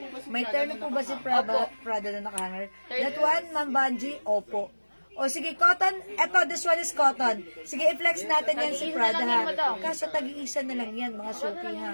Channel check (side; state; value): both; inverted; correlation -1.00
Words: May terno po ba si Prada na nakahanger? That one, Ma'am Banji? Opo. O sige, cotton. Eto, this one is cotton. Sige, i-flex natin yan si Prada ha. Kaso tag-iisa na lang yan, mga suki